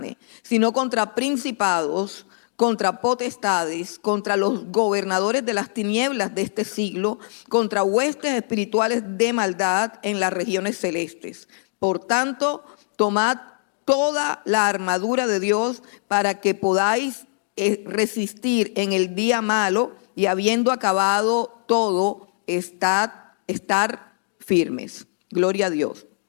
sino contra principados, contra potestades, contra los gobernadores de las tinieblas de este siglo, contra huestes espirituales de maldad en las regiones celestes. Por tanto, tomad toda la armadura de Dios para que podáis resistir en el día malo, y habiendo acabado todo, estar firmes. Gloria a Dios.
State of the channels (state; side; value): silent; right; digital silence